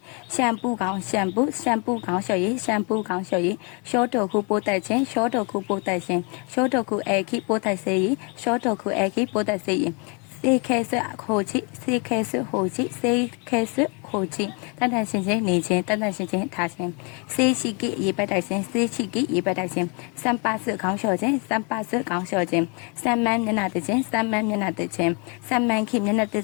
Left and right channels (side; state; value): right; quieter; 34.0 dB